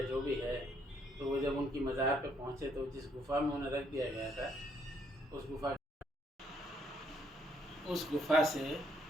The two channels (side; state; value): both; normal; correlation 0.70